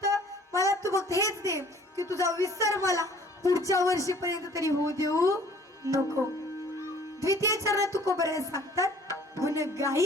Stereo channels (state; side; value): normal; both; correlation 0.53